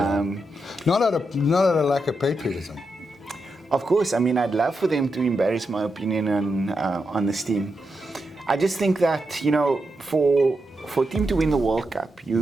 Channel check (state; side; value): normal; both; correlation 0.85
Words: Not out of a lack of patriotism. Of course, I mean, I'd love for them to embarrass my opinion on this team. I just think that, you know, for a team to win the World Cup,